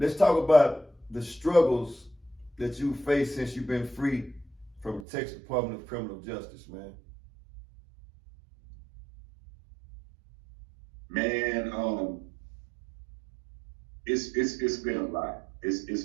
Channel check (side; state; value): left; drops out; at 5.1 s